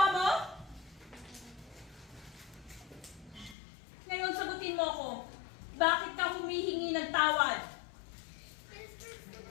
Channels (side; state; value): right; drops out; at 3.6 s